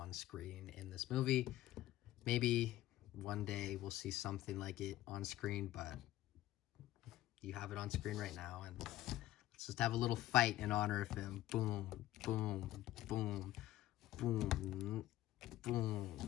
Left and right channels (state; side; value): quieter; right; 14.6 dB